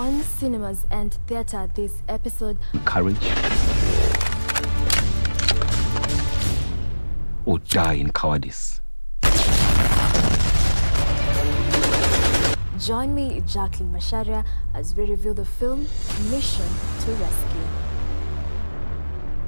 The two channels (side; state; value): both; inverted; correlation -1.00